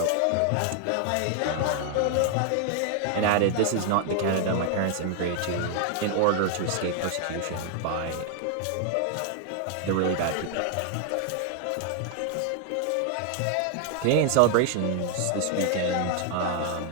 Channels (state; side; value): different; both; correlation 0.00